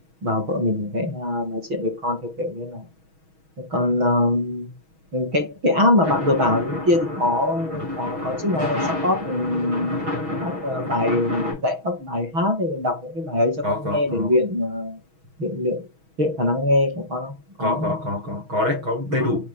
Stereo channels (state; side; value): late; left; 6.3 ms